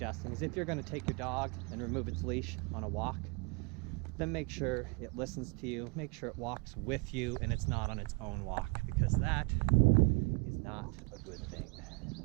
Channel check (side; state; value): left; quieter; 28.9 dB